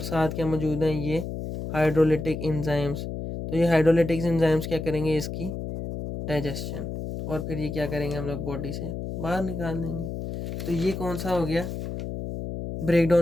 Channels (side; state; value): left; noise; hum, 6 dB below the sound